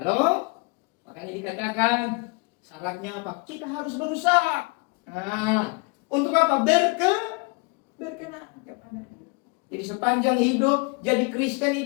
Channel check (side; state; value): right; quieter; 28.1 dB